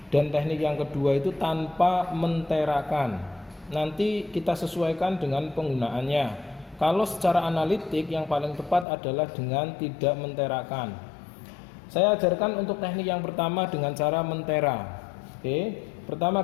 dan teknik yang kedua itu tanpa menterakan. Nanti kita sesuaikan dengan penggunaannya. Kalau secara analitik yang paling tepat adalah dengan tidak menterakan. Saya ajarkan untuk teknik yang pertama dengan cara mentera. Oke,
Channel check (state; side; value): drops out; right; at 8.8 s